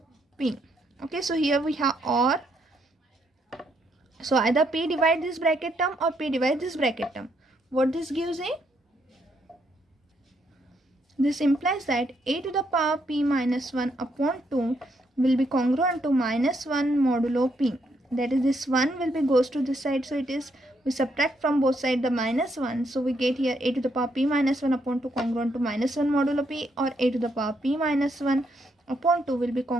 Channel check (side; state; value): both; normal; correlation 0.75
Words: p. Okay, so here we have OR. So either p divide this bracket term or p divide this bracket term. What this gives a? This implies that a to the power p minus 1 upon 2 will be congruent to minus 1 modulo p. That is, this 1 will be goes to this side, so it is, we subtract from both sides the minus 1. So we get here a to the power p minus 1 upon 2 congruent to minus 1 modulo p, or a to the power p minus 1 upon 2 will be